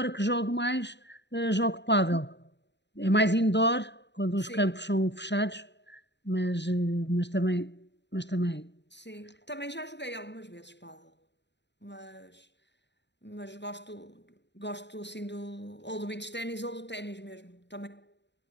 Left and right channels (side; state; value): right; late; 0.51 ms